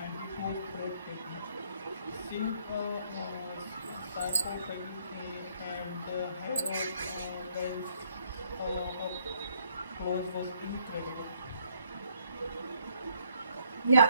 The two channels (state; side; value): inverted; both; correlation -0.67